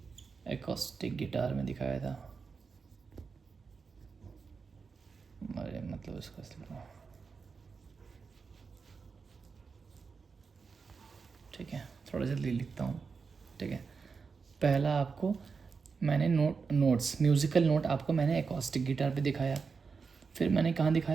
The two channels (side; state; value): left; quieter; 5.1 dB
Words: एकॉस्टिक गिटार में दिखाया था। अरे मतलब इसका ठीक है, थोड़ा जल्दी लिखता हूँ। ठीक है, पहला आपको मैंने नोट्स म्यूज़िकल नोट आपको मैंने एकॉस्टिक गिटार पे दिखाया। फिर मैंने कहाँ